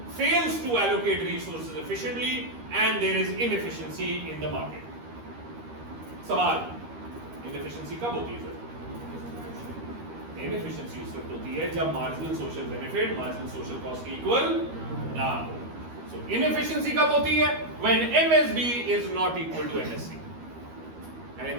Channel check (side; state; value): left; late; 13 ms